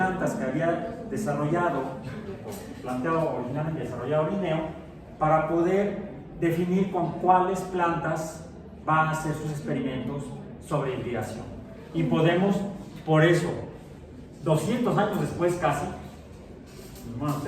que había desarrollado, o planteado originalmente desarrollado Linneo, para poder definir con cuáles plantas va a hacer sus experimentos sobre hibridación. Y podemos, por eso, 200 años después casi, bueno,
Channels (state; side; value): identical; both; correlation 1.00